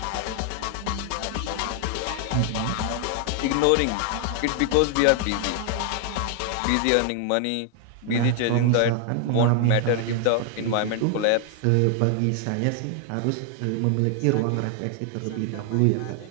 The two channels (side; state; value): both; different; correlation 0.00